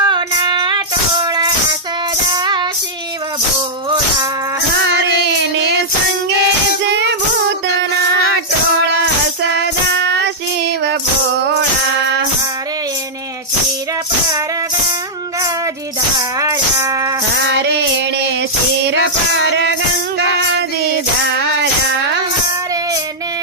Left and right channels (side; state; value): both; normal; correlation -0.09